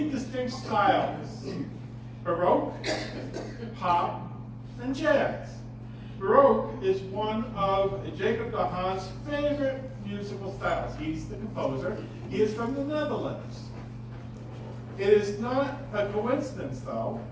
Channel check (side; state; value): both; identical; correlation 1.00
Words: distinct styles: Baroque, pop, and jazz. Baroque is one of Jacob de Haan's favorite musical styles. He's the composer. He is from the Netherlands. It is not a coincidence, though,